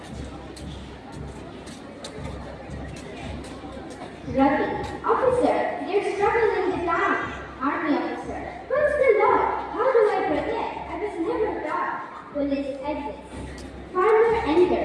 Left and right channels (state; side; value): identical; both; correlation 1.00